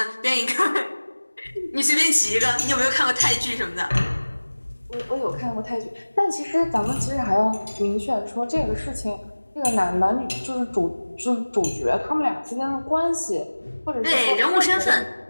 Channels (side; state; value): both; inverted; correlation -1.00